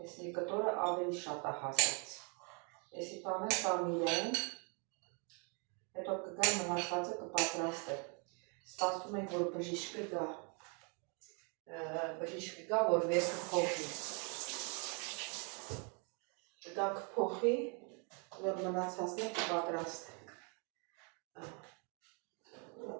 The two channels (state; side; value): quieter; left; 36.1 dB